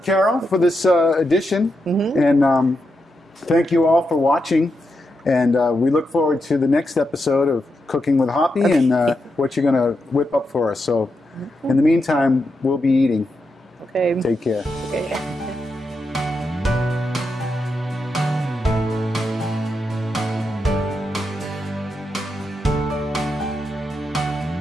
Carol, for this edition. And thank you all for watching. And we look forward to the next episode of Cooking with Hoppy and what you're going to whip up for us. So in the meantime, we'll be eating. Okay. Take care. Okay.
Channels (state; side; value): normal; both; correlation 0.85